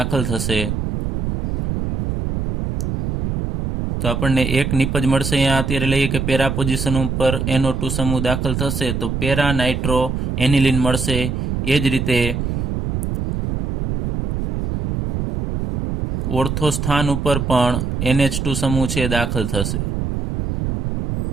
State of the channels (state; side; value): noise; right; rumble, 2 dB below the sound